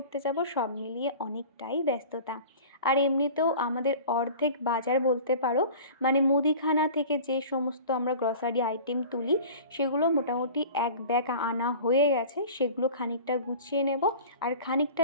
যাব, সব মিলিয়ে অনেকটাই ব্যস্ততা। আর এমনিতেও আমাদের অর্ধেক বাজার বলতে পারো, মানে মুদিখানা থেকে যে সমস্ত আমরা গ্রসারি আইটেম তুলি সেগুলো মোটামুটি এক ব্যাগ আনা হয়ে গেছে। সেগুলো খানিকটা গুছিয়ে নেব, আর খানিকটা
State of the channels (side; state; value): both; inverted; correlation -0.40